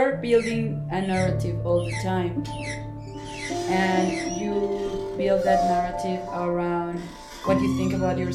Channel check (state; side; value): identical; both; correlation 1.00